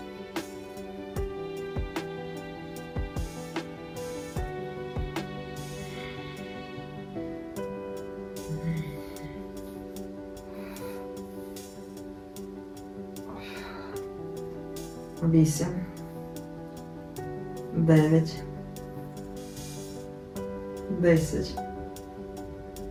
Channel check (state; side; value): identical; both; correlation 1.00